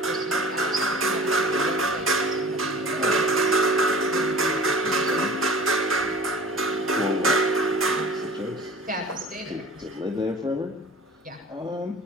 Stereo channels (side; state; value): both; normal; correlation 0.43